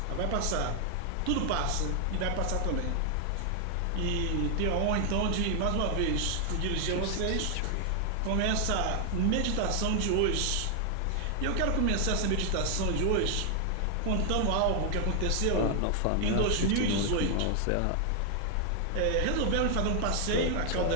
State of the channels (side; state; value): both; different; correlation 0.00